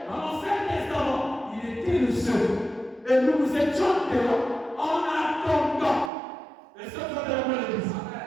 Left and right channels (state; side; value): drops out; left; at 6.1 s